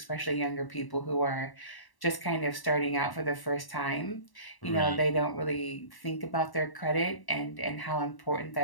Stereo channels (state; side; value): late; right; 1.1 ms